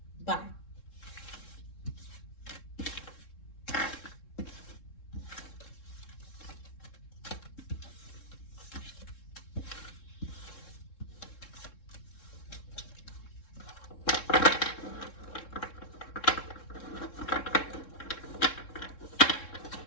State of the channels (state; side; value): late; right; 3.7 ms